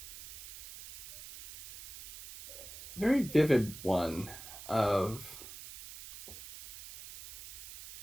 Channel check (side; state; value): right; noise; hiss, 14 dB below the sound